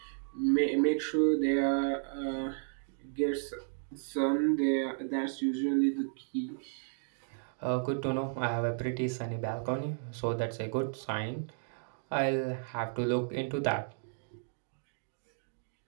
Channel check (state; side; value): silent; left; digital silence